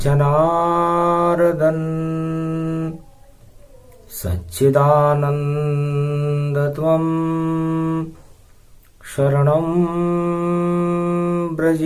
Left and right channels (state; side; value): identical; both; correlation 1.00